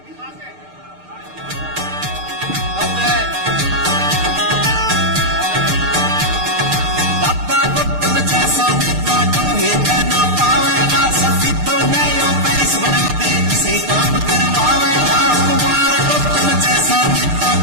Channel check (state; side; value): late; left; 6.6 ms